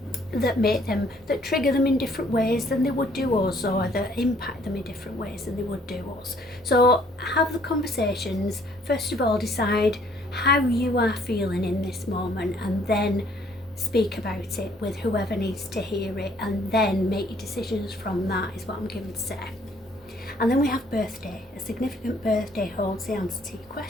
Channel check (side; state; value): both; normal; correlation 0.62